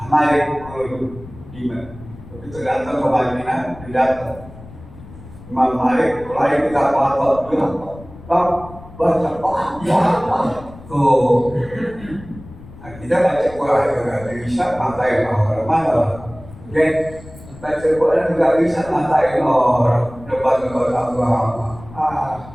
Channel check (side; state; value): left; noise; rumble, 18 dB below the sound